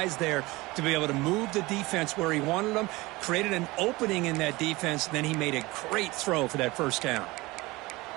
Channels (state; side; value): quieter; left; 21.6 dB